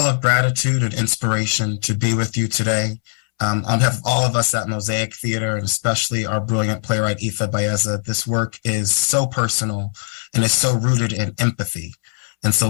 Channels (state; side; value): silent; right; 66 dB below the other